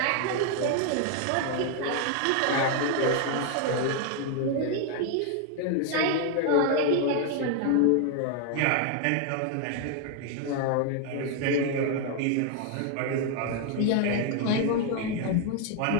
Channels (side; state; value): both; different; correlation 0.00